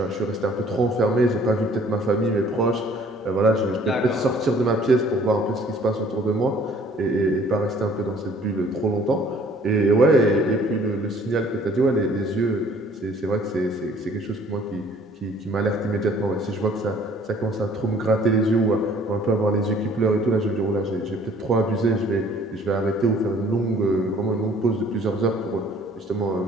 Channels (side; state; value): both; normal; correlation 0.56